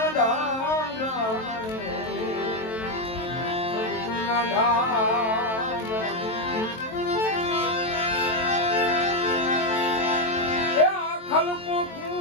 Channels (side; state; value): right; late; 23 ms